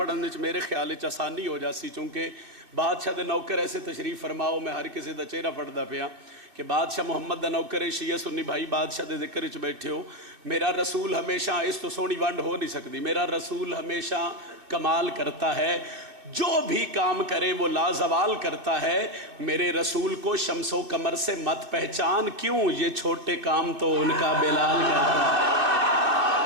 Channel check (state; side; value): late; left; 2.5 ms